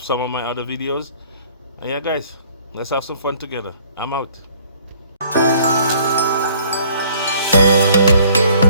of my other videos. And yeah, guys, let's have some fun together. I'm out.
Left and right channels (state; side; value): inverted; both; correlation -0.58